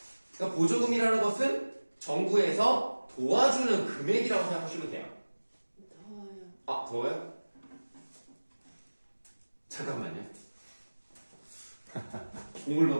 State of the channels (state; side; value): inverted; both; correlation -1.00